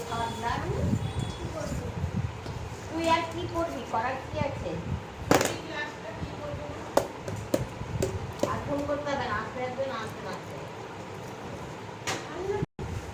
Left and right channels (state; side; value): identical; both; correlation 1.00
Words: খাওয়ার glass তুই আর কি করবি, করার কি আছে? আর ফোন করতে হবে না, আসতে আসবে না, আসতে না আসতে।